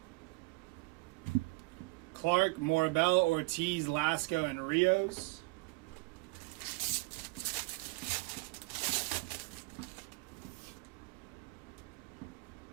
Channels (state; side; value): quieter; left; 24.3 dB